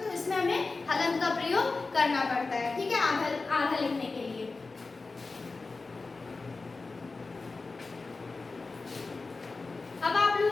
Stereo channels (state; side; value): quieter; right; 3.8 dB